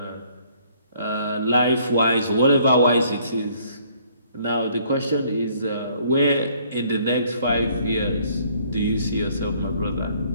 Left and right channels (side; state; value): both; inverted; correlation -0.62